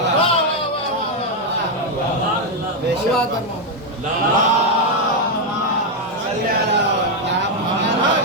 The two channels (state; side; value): normal; both; correlation 0.02